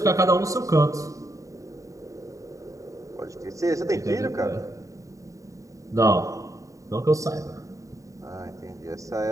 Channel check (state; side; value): late; left; 0.16 ms